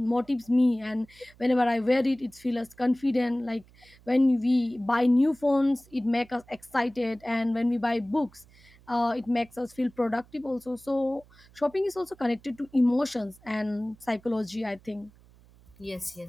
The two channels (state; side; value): noise; right; hum, 27 dB below the sound